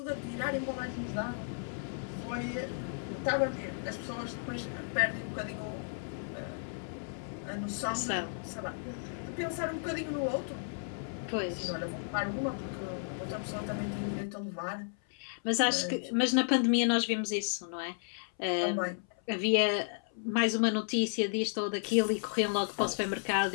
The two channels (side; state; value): right; silent; 55 dB below the other